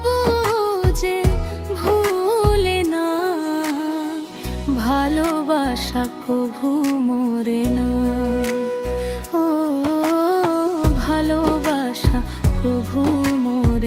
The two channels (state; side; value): identical; both; correlation 1.00